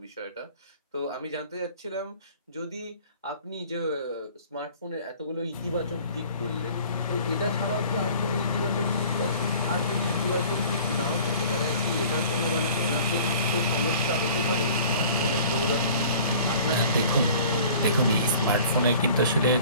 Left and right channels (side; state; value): both; inverted; correlation -0.47